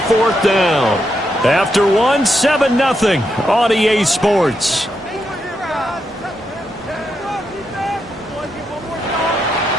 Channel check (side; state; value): both; normal; correlation 0.82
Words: 4th down. After 7-0 on EA Sports.